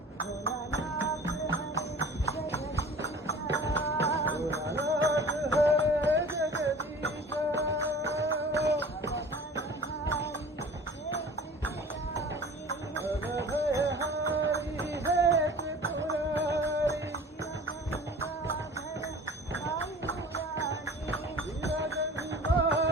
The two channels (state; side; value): normal; both; correlation 0.43